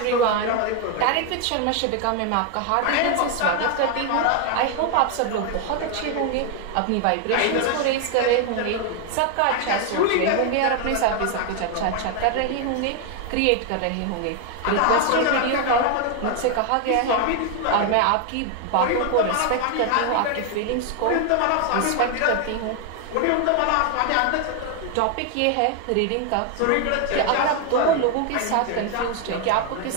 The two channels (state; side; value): different; both; correlation 0.00